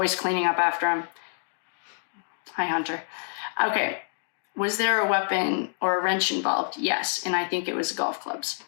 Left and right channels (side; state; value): right; silent; digital silence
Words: cleaning up after him. Hi, Hunter. Okay. Was there a weapon or a wrench involved? Yes. And I think it was golf clubs.